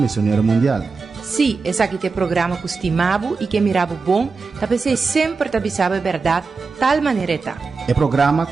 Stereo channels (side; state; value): left; quieter; 4.5 dB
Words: Mundial. Sim, esse aqui é o programa que estimava e que mirava bom, talvez sempre te avisava a verdade, tal maneira tá. É programa